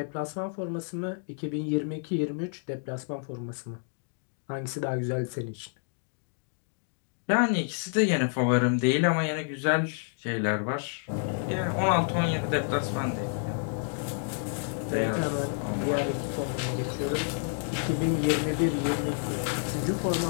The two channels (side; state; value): right; silent; 56 dB below the other